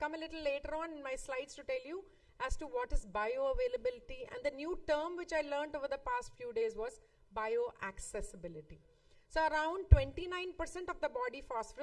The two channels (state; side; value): identical; both; correlation 1.00